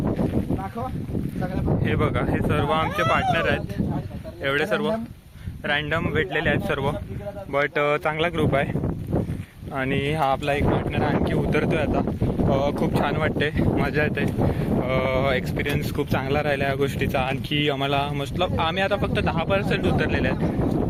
हे बघा, हे सर्व आमचे पार्टनर आहेत. एवढे सर्व रॅन्डम भेटलेले आहेत सर्व, बट चांगला ग्रुप आहे. आणि हा आपला एक पार्टनर आणखी उतरतोय आता. खूप छान वाटते, मजा येते. एक्सपिरियन्स खूप चांगला राहिला या गोष्टीचा. आणखी आम्हाला मतलब आम्ही आता फक्त 10% उतरलेले आहेत.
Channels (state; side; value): identical; both; correlation 1.00